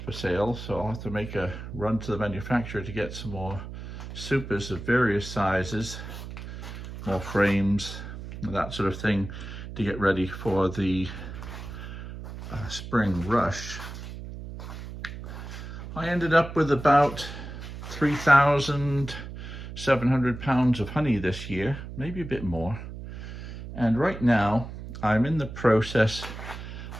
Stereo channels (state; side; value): noise; right; hum, 10 dB below the sound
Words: for sale, so I'll have to make a run to the manufacturer to get some more supers of various sizes, more frames, that sort of thing, to get ready for the spring rush. I ended up with about 3,700 pounds of honey this year, maybe a bit more. And right now I'm in the process